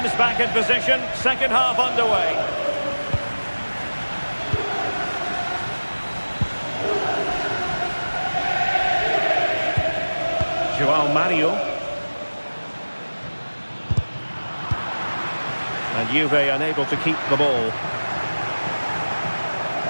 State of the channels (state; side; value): inverted; both; correlation -1.00